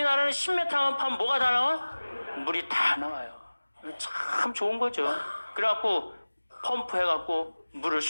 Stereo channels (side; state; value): both; inverted; correlation -1.00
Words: 10m만 파면 뭐가 다 나와? 물이 다 나와요. 참 좋은 거죠. 그래갖고 펌프 해갖고 물을